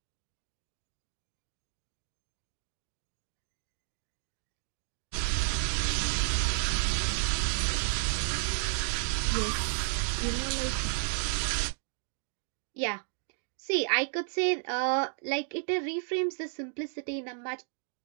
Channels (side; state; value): left; silent; digital silence